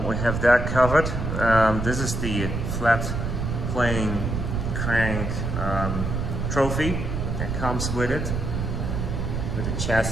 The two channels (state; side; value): noise; right; rumble, 2 dB below the sound